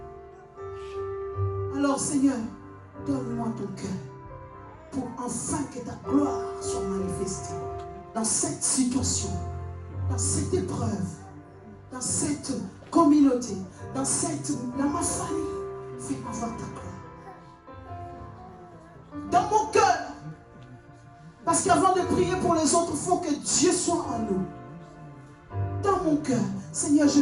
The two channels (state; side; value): identical; both; correlation 1.00